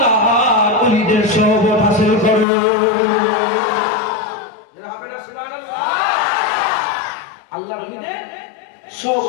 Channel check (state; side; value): drops out; right; at 2.5 s